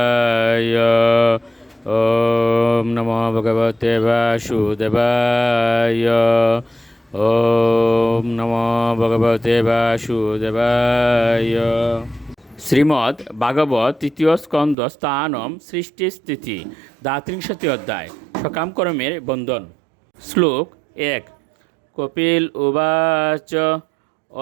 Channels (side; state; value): left; drops out; at 14.8 s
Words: ওম নমো ভগবতে বাসুদেবায়। ওম নমো ভগবতে বাসুদেবায়। শ্রীমদ্ ভাগবত তৃতীয় স্কন্দ স্থানম সৃষ্টি স্থিতি দ্বাত্রিংশতি অধ্যায় সকামকর্মের বন্ধন। শ্লোক 1। কপিল উবাচ